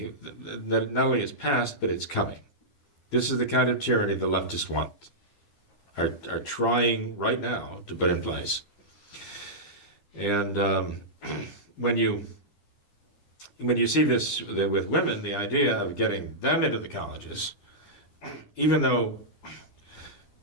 that not only is past, but it's coming. This is the kind of tyranny the leftists want. Are trying right now to put in place. And when you see this with women, the idea of getting them into the colleges, even though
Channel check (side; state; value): right; late; 9.9 ms